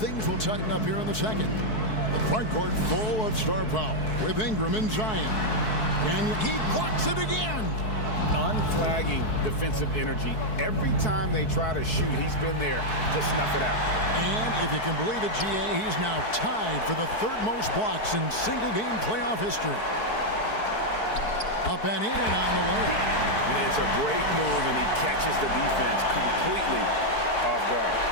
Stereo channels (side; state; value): right; late; 4.6 ms